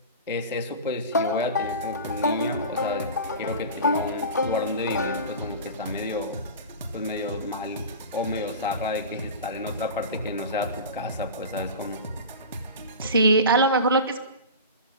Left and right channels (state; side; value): inverted; both; correlation -0.31